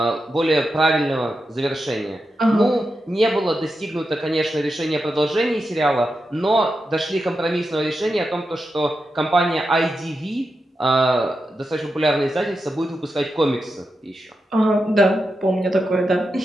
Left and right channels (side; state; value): both; normal; correlation 0.88